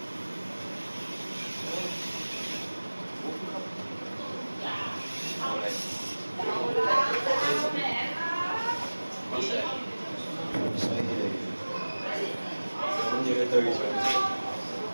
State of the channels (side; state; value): both; inverted; correlation -1.00